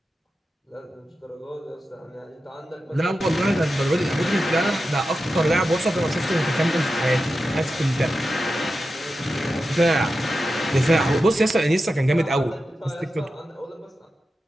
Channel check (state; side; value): normal; both; correlation 0.91